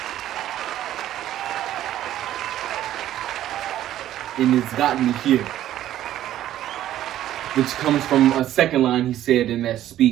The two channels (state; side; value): quieter; left; 12.7 dB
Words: And it's gotten me here. Which comes from a second line he said in that